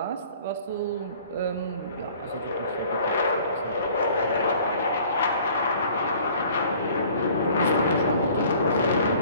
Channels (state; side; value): inverted; both; correlation -0.52